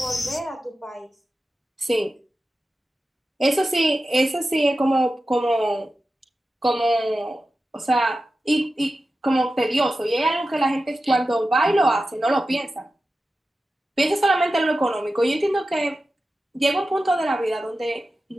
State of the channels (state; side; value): normal; both; correlation 0.93